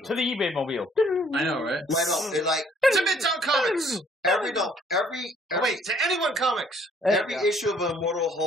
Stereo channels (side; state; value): both; normal; correlation 0.61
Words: to the eBay mobile. I know, right? Right on. It to Midtown Comics. To Anyone Comics. Every issue of Immortal